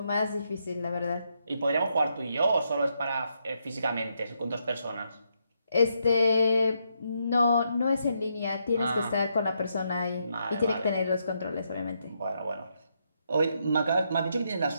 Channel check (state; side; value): inverted; both; correlation -0.79